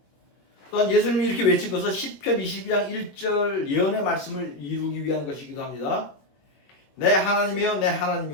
또한 예수님이 이렇게 외친 것은 시편 22장 1절 예언의 말씀을 이루기 위한 것이기도 합니다. 내 하나님이여 내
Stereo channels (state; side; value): late; right; 21 ms